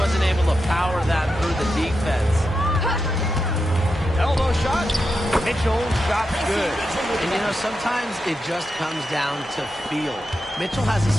able to power that through the defense. Elbow shot. Mitchell, shot's good. And, you know, sometimes it just comes down to feel. Mitchell has a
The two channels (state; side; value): normal; both; correlation 0.87